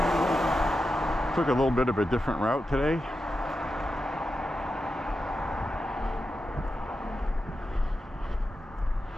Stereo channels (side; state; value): both; normal; correlation 0.89